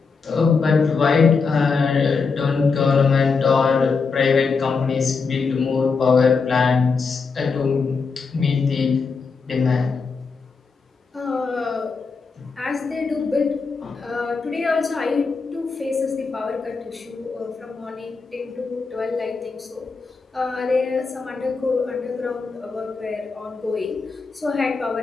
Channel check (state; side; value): quieter; right; 4.8 dB